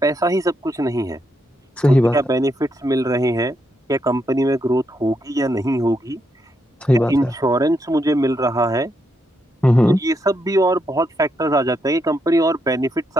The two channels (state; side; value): normal; both; correlation 0.80